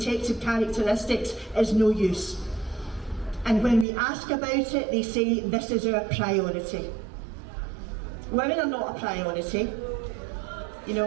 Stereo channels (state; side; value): drops out; left; at 3.9 s